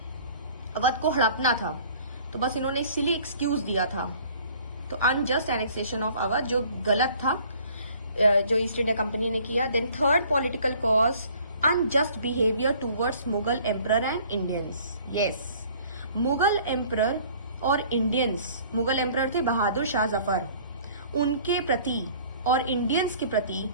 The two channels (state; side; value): inverted; both; correlation -0.53